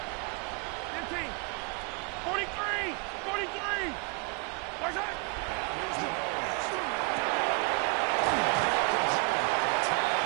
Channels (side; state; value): left; quieter; 31.8 dB